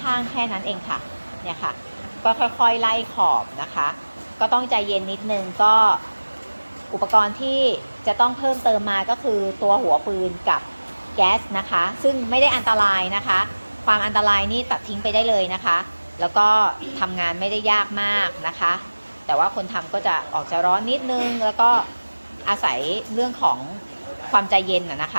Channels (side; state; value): both; inverted; correlation -1.00